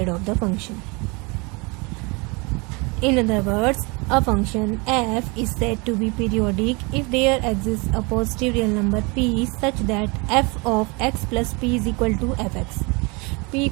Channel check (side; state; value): left; quieter; 28.8 dB